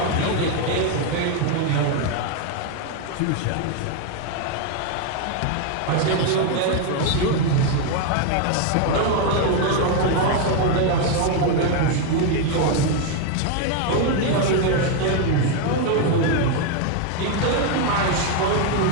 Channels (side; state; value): both; different; correlation 0.01